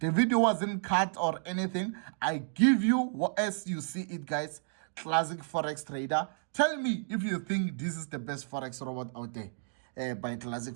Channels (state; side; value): silent; left; digital silence